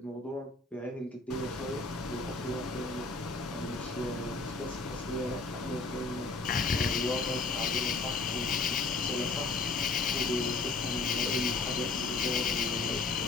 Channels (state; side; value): quieter; right; 3.8 dB